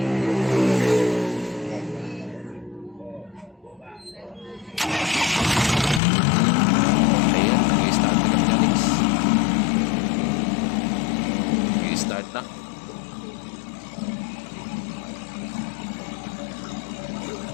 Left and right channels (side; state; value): right; drops out; at 6.0 s